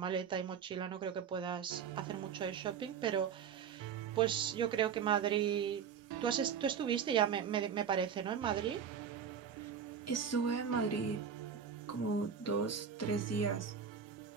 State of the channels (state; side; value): quieter; left; 7.3 dB